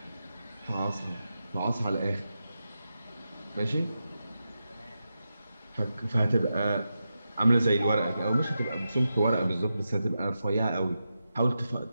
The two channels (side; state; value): both; inverted; correlation -0.89